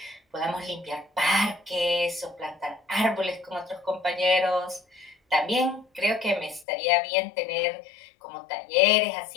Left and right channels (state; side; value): drops out; right; at 6.7 s